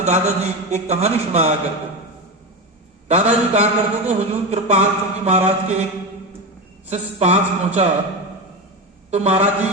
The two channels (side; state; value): both; normal; correlation 0.19